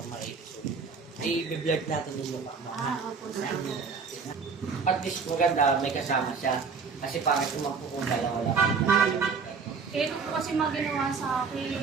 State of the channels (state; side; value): quieter; left; 5.3 dB